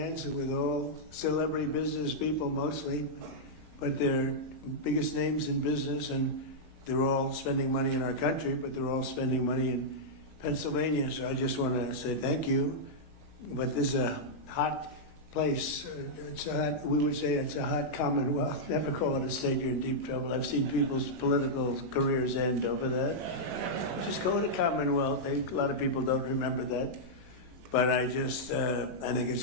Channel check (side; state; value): left; late; 19 ms